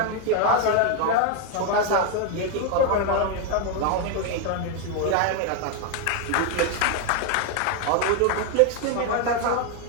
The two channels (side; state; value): both; different; correlation 0.01